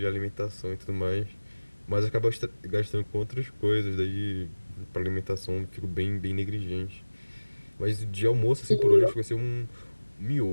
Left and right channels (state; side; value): inverted; both; correlation -1.00